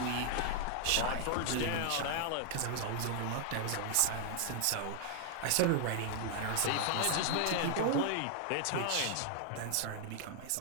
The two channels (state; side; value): different; both; correlation 0.00